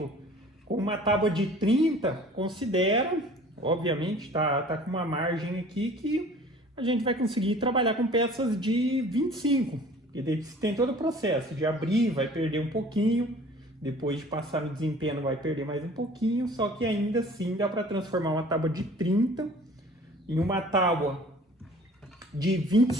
com uma tábua de 30, considera, obviamente tá com uma margem aqui que a gente vai conseguir trabalhar com peças de 25. E daí tem todo o processo de abrir, vai perder um pouquinho, depois de passar no desempenho vai perder mais um pouquinho, só que ainda assim dá para transformar uma tábua de 30 em uma tábua de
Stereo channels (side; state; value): both; normal; correlation 0.48